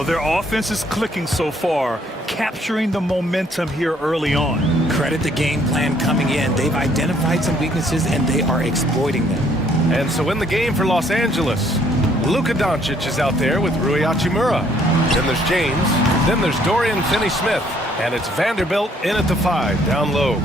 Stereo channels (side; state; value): both; normal; correlation 0.65